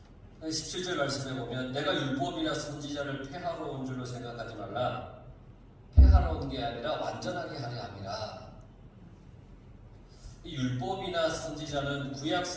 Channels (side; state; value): both; identical; correlation 1.00